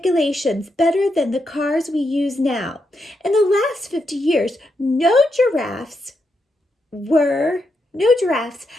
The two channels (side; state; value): both; normal; correlation 0.83